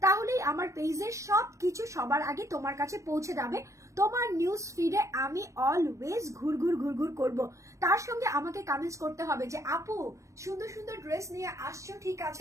তাহলেই আমার পেজের সবকিছু সবার আগে তোমার কাছে পৌঁছে যাবে। তোমার নিউজ ফিডে আমি অলওয়েজ ঘুরঘুর করব। তার সঙ্গে আমাকে কমেন্টস করতে হবে যে আপু সুন্দর সুন্দর ড্রেস নিয়ে আসছো, ঠিক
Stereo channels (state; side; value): late; left; 0.15 ms